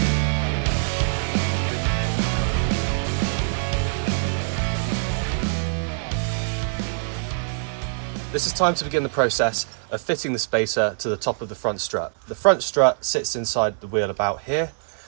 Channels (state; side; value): silent; left; digital silence